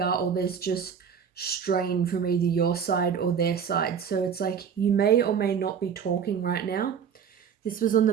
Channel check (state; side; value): quieter; left; 7.3 dB